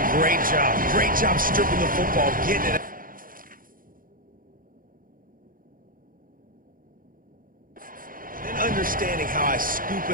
great job. Great job stripping the football, getting it out. Understanding how I scoop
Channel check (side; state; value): left; late; 0.41 ms